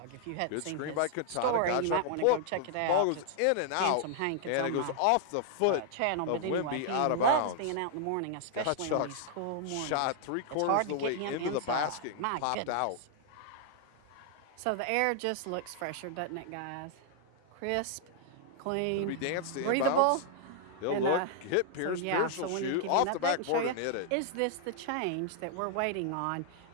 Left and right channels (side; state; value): both; different; correlation -0.01